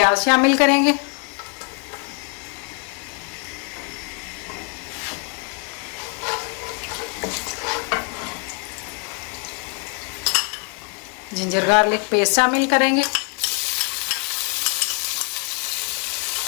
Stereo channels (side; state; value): right; quieter; 36.8 dB